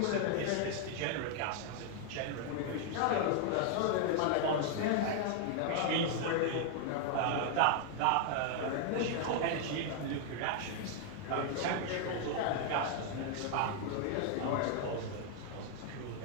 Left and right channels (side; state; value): both; different; correlation 0.00